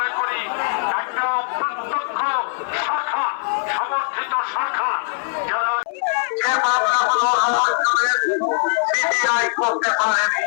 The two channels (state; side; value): silent; right; 58 dB below the other